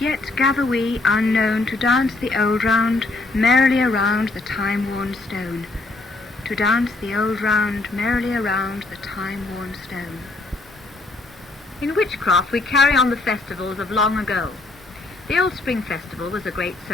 gather we unknown to dance the old round merrily around the time-worn stone. To dance the old round merrily around the time-worn stone. In Witchcraft we carry on the festivals of long ago. The Old Spring Festival was a great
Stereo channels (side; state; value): right; quieter; 3.2 dB